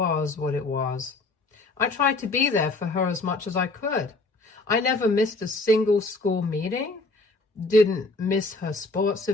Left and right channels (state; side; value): quieter; right; 3.3 dB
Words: what it was. I tried to be there for her as much as I could. I never missed a single school meeting, didn't miss her sports